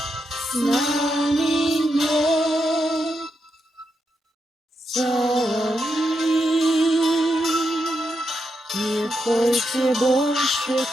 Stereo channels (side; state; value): both; normal; correlation 0.83